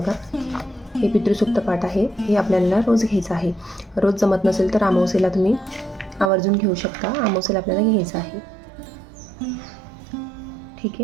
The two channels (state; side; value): drops out; left; at 6.3 s